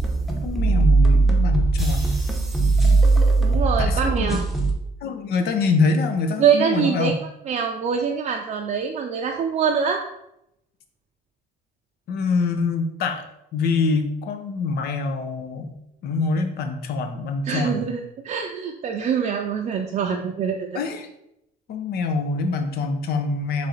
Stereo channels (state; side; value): normal; both; correlation 0.61